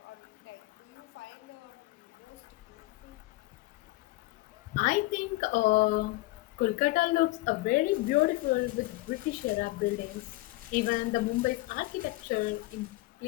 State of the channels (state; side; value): quieter; right; 19.7 dB